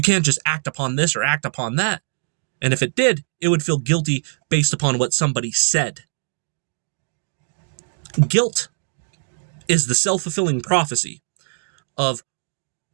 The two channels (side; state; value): left; silent; digital silence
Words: can't just act upon this or act upon that. And if it did, it would feel guilty based upon what somebody said. Guilt is the self-fulfilling prophecy of